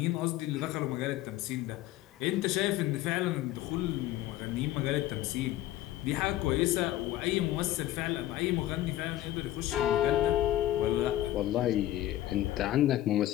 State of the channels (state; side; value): quieter; right; 14.3 dB